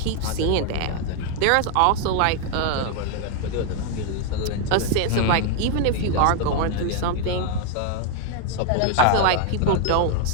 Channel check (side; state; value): both; different; correlation 0.00